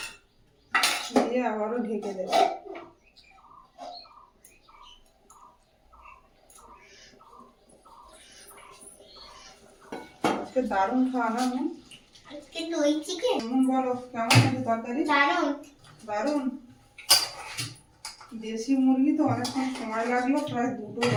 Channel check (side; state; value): both; identical; correlation 1.00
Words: দিয়ে আবারও ঢেকে দেব। আজকে দারুণ খাওয়া না? আজকে দই চিকেন। বলো কেমন আছে তরকারি? দারুণ। দারুণ। দেশি মুরগি তো অনেকক্ষণ সময় লাগলো, প্রায় 2টো